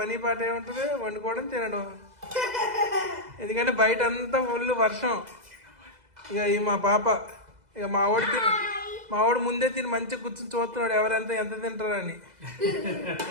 పని పాట ఏముంటుంది, వండుకోవడం తినడం. ఎందుకంటే బయట అంతా ఫుల్ వర్షం. ఇక ఈ మా పాప, ఇక మా వాడు ముందే తిని మంచిగా కూర్చొని చూస్తున్నాడు ఎవరెంత ఎంత తింటారని.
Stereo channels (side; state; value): left; late; 2.0 ms